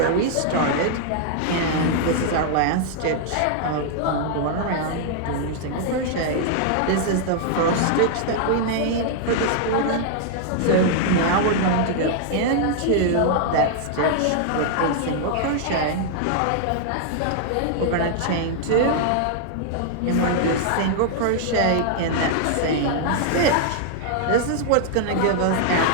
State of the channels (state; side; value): different; both; correlation -0.01